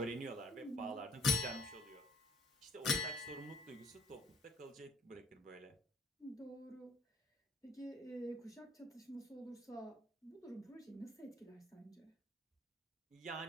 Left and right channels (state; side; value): normal; both; correlation 0.59